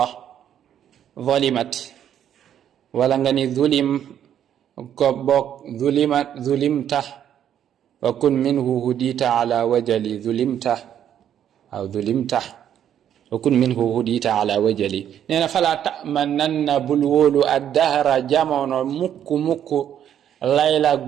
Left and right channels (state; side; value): quieter; left; 9.9 dB